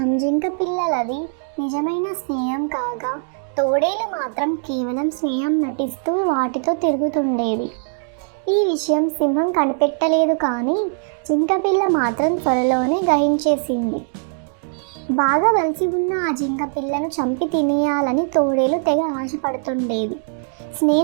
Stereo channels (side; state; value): left; silent; digital silence